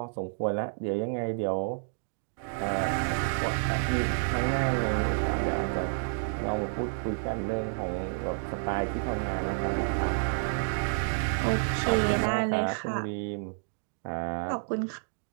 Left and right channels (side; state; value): left; silent; digital silence